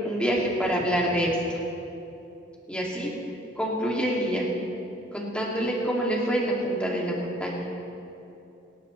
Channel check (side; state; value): both; normal; correlation 0.58